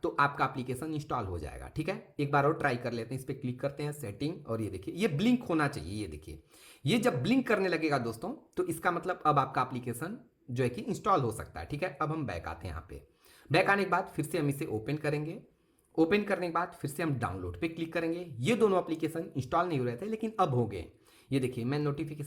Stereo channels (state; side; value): identical; both; correlation 1.00